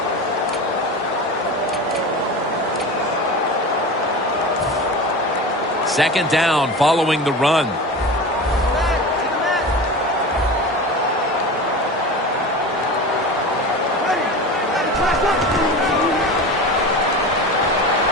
Second down following the run.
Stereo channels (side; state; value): both; normal; correlation 0.30